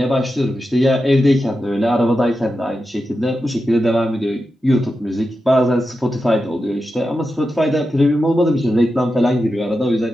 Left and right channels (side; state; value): both; normal; correlation 0.90